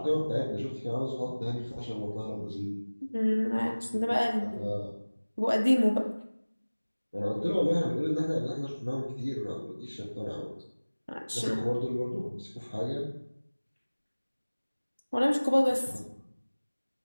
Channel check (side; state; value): both; inverted; correlation -1.00